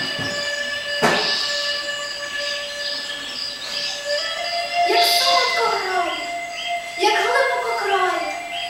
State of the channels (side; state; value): both; identical; correlation 1.00